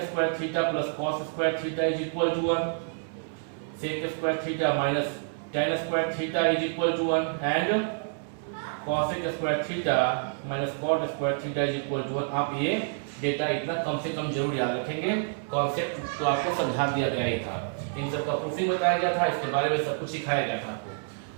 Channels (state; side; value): silent; left; 59 dB below the other